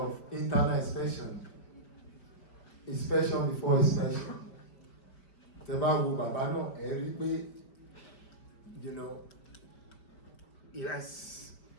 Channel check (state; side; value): late; right; 5.2 ms